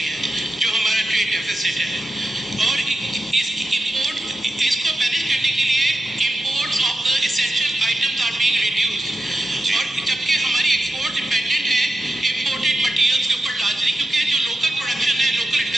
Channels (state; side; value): normal; both; correlation 0.90